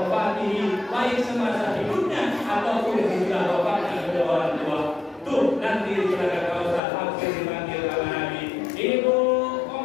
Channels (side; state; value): right; drops out; at 6.8 s